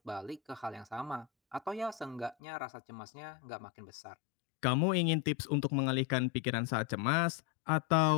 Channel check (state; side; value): drops out; right; at 2.4 s